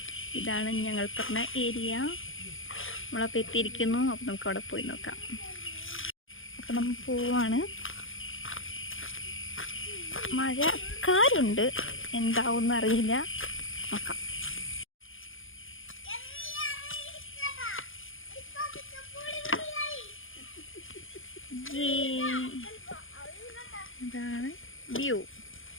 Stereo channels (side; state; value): right; late; 0.58 ms